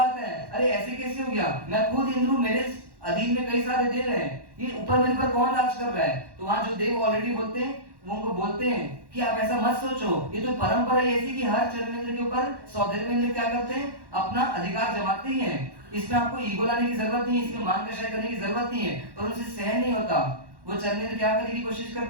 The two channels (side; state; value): left; late; 1.1 ms